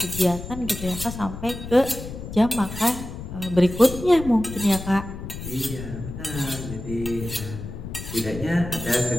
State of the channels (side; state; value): left; noise; rumble, 9 dB below the sound